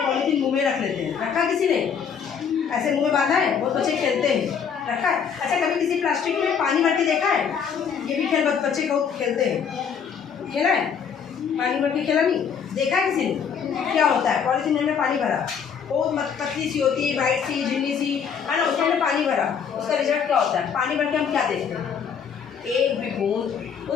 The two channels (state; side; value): quieter; right; 7.0 dB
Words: पॉलीथीन मुँह में रख लेते हैं। रखा किसी ने? ऐसे मुँह में बांधा है, बहुत बच्चे खेलते हैं, रखा है। अच्छा, कभी किसी प्लास्टिक में पानी भर के देखा है? ये भी खेल बच्चे बहुत खेलते हैं, खेला है? पानी भर के खेला नहीं? देखा है किसी ने? क्या होता है? पॉलीथीन में पानी भरा, बहुत पतली सी होती है, वाइट सी झिल्ली सी, है ना, उसमें पानी भरा, उसका रिजल्ट क्या होता है? पानी भर के हम क्या देखते हैं? एक भी बूंद